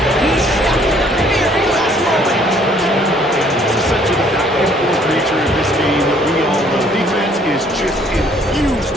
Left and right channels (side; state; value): both; normal; correlation 0.61